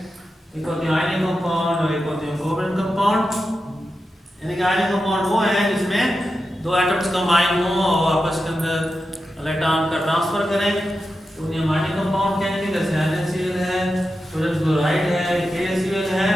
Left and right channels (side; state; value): both; normal; correlation 0.90